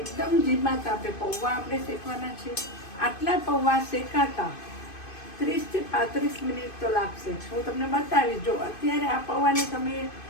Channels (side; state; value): right; late; 2.5 ms